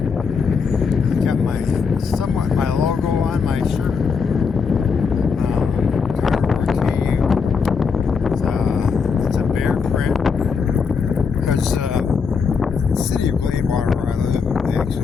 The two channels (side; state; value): right; quieter; 5.6 dB